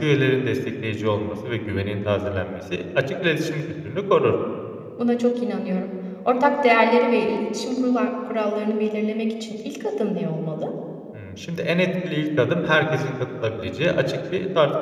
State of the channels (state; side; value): identical; both; correlation 1.00